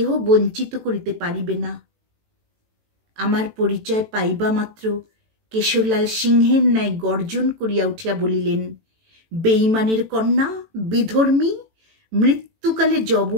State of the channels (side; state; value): left; late; 18 ms